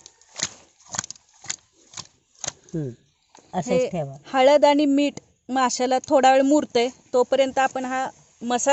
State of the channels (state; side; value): identical; both; correlation 1.00